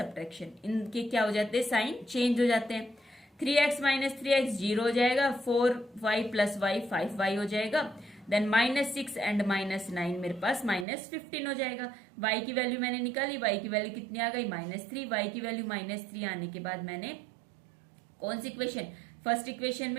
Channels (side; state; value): left; drops out; at 10.9 s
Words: इनके क्या हो जाते हैं, साइन चेंज हो जाते हैं। 3x माइनस 3x 0 हो जाएगा, 4y प्लस y 5y हो जाएगा, देन माइनस 6 एंड माइनस 9 मेरे पास माइनस 15 हो जाएगा। y की वैल्यू मैंने निकाली, y की वैल्यू कितनी आ गई, माइनस 3। y की वैल्यू माइनस 3 आने के बाद मैंने कौन सी इक्वेशन, फर्स्ट इक्वेशन